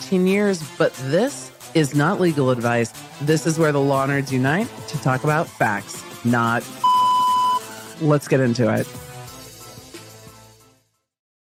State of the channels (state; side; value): identical; both; correlation 1.00